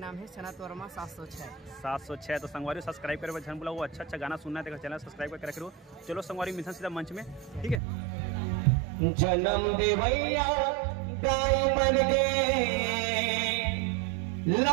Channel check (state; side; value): drops out; left; at 7.8 s